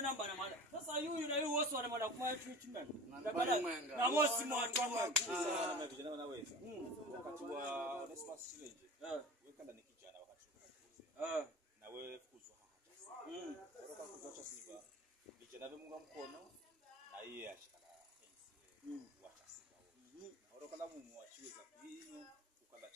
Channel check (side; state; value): both; normal; correlation 0.37